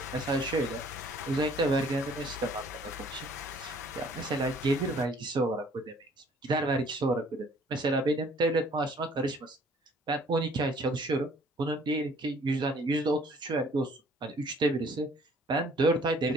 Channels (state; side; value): normal; both; correlation 0.57